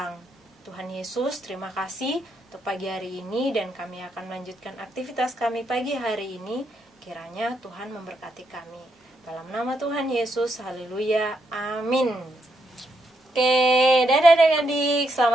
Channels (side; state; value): both; normal; correlation 0.79